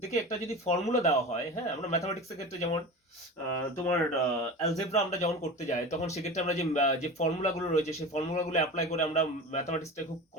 দেখে একটা যদি ফর্মুলা দেওয়া হয়, হ্যাঁ, আমরা ম্যাথামেটিক্সের ক্ষেত্রে যেমন তোমার অ্যালজেব্রা আমরা যখন করতে যাই তখন সেক্ষেত্রে আমরা যে ফর্মুলাগুলো রয়েছে সেই ফর্মুলাগুলো অ্যাপ্লাই করে আমরা ম্যাথামেটিক্সটা খুব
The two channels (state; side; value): normal; both; correlation 0.31